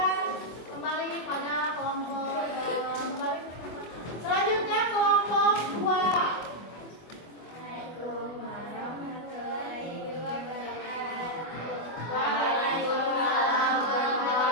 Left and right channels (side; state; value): right; late; 24 ms